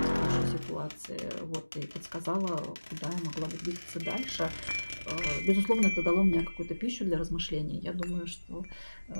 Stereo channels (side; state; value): both; inverted; correlation -1.00